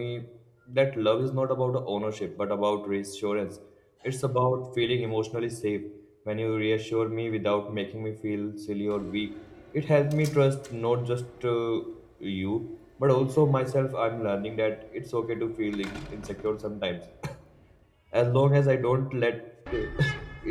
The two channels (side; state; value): both; identical; correlation 1.00